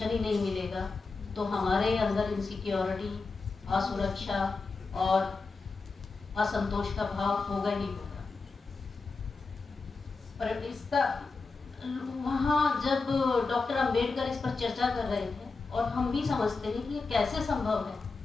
ही नहीं मिलेगा तो हमारे अंदर इनसिक्योरिटी, असुरक्षा और असंतोष का भाव होगा ही होगा। पर इसका वहाँ जब डॉक्टर अंबेडकर इस पर चर्चा कर रहे थे और हम भी समझते हैं कि ये कैसे संभव है,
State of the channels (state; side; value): quieter; right; 4.1 dB